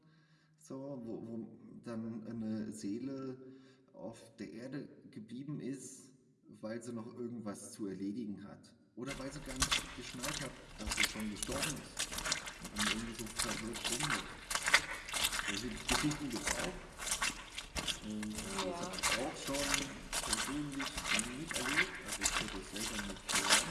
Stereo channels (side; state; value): both; identical; correlation 1.00